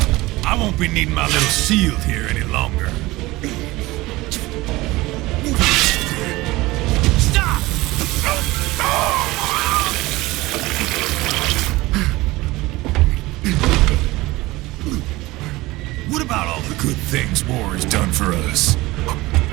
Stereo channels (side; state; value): left; quieter; 20.0 dB